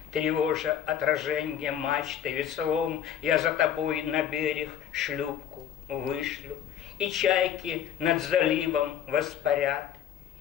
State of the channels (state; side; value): quieter; right; 9.5 dB